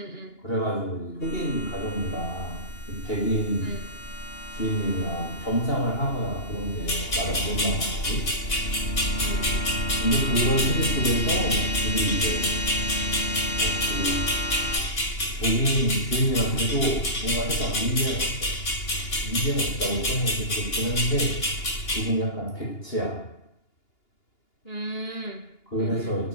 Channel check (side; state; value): right; late; 2.8 ms